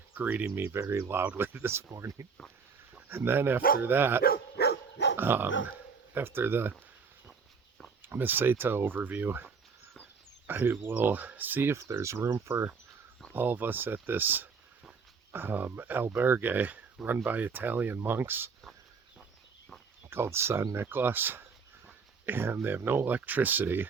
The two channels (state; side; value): quieter; left; 5.4 dB